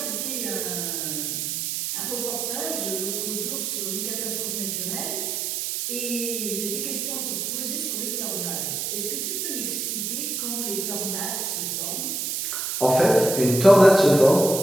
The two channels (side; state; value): right; noise; hiss, 2 dB below the sound